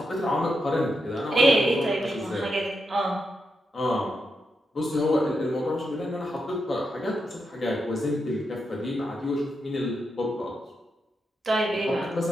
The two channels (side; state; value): both; normal; correlation 0.84